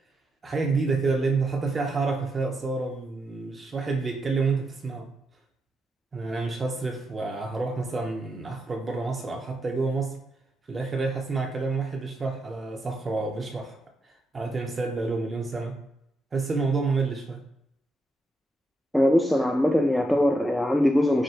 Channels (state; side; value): normal; both; correlation 0.84